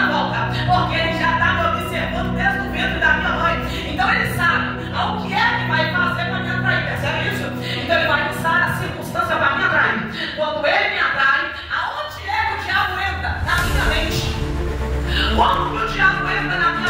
volta, porque ele já está me observando desde o ventre da minha mãe. Então ele sabe o que é que vai fazer para me atrair. Percebe isso? Então ele vai usar a circunstância para me atrair. Quando ele me atrai, aonde é que o diabo entra? Na minha mente. Como que o diabo entra na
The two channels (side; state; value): both; identical; correlation 1.00